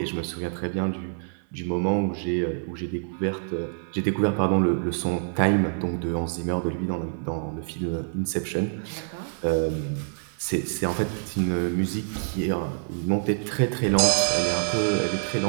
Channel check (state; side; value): silent; left; digital silence